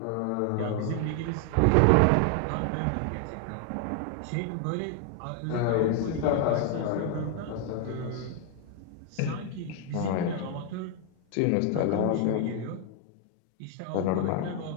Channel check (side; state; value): both; different; correlation 0.00